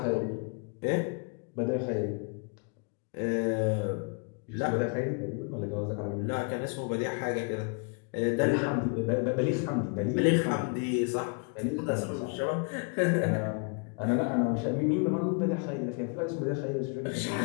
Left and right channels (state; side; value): quieter; right; 36.2 dB